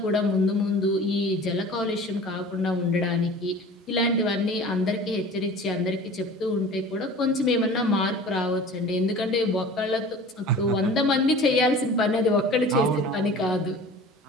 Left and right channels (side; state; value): both; normal; correlation 0.41